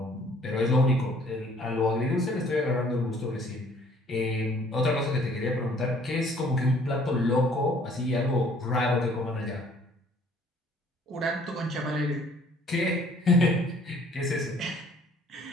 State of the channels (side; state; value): both; normal; correlation 0.58